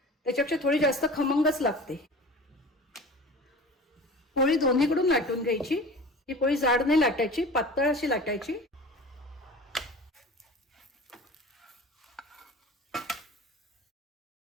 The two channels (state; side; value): normal; both; correlation 0.38